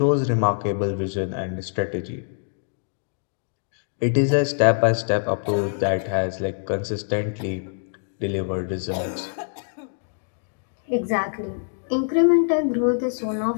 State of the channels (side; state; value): right; silent; digital silence